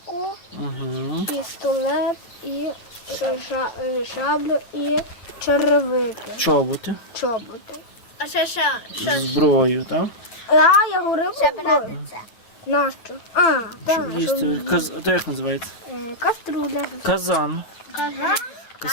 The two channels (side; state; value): right; late; 8.8 ms